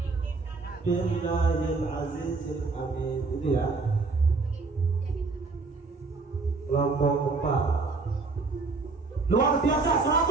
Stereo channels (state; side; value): quieter; left; 4.0 dB